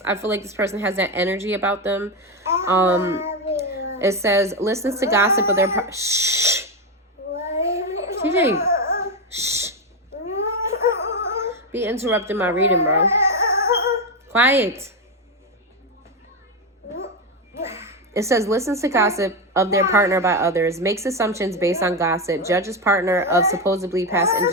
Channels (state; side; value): normal; both; correlation 0.10